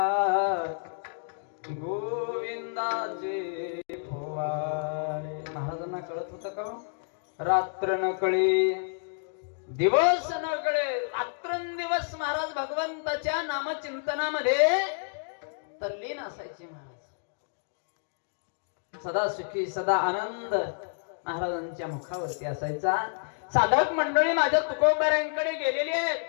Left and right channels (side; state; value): right; silent; digital silence